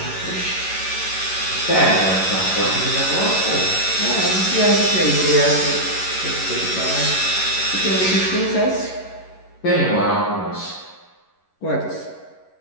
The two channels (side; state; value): right; late; 11 ms